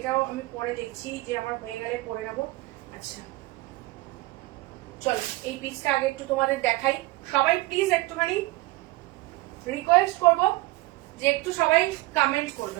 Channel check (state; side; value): quieter; left; 20.0 dB